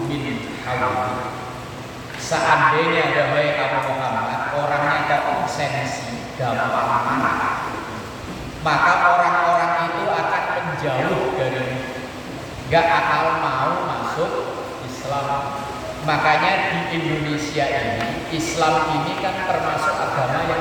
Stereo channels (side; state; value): both; identical; correlation 1.00